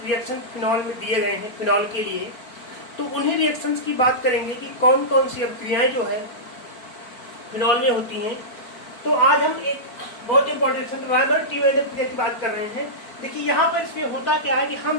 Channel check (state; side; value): late; right; 4.5 ms